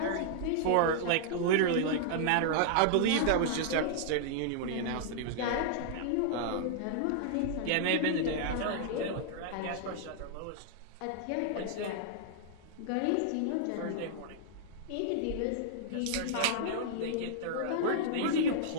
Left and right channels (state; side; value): different; both; correlation -0.01